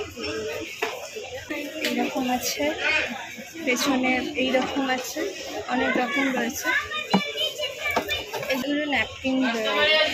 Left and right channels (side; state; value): both; identical; correlation 1.00